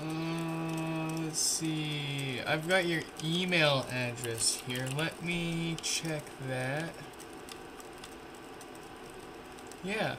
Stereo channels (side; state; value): both; identical; correlation 1.00